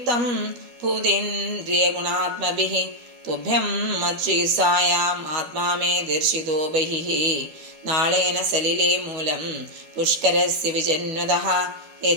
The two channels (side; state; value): left; late; 12 ms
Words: ഭൂതേന്ദ്രിയഗുണാത്മഭിഃ തുഭ്യം മത്ശ്രീസായാം ആത്മാ മേ ദർശിതോ ബഹിഃ. നാളേന സലിലേ മൂലം പുഷ്കരസ്യ വിജന്വതഃ